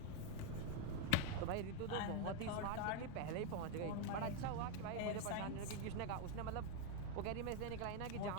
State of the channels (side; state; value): both; different; correlation 0.01